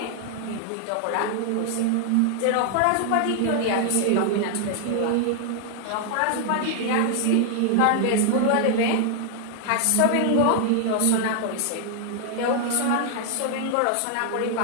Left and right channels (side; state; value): both; different; correlation 0.00